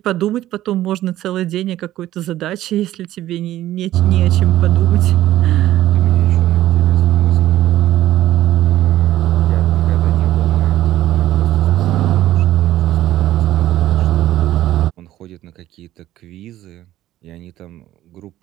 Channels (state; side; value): quieter; left; 14.1 dB